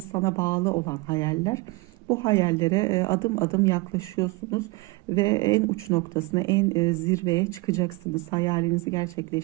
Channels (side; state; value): left; quieter; 23.7 dB